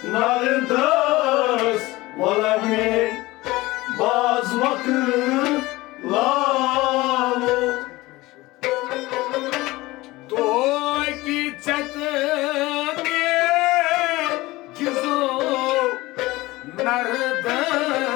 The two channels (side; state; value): right; quieter; 19.8 dB